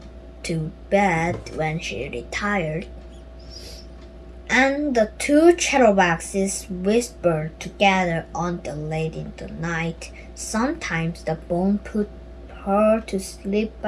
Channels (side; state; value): both; identical; correlation 1.00